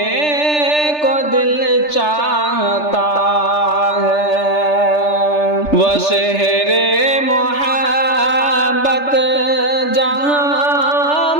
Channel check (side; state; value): right; late; 3.3 ms